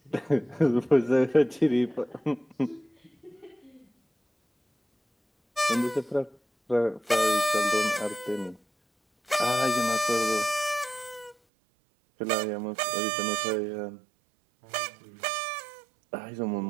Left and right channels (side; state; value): left; drops out; at 11.4 s